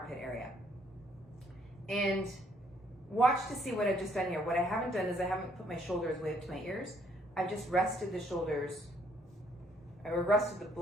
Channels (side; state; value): both; normal; correlation 0.67